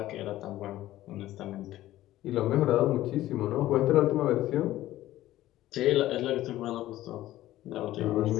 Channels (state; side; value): quieter; right; 14.9 dB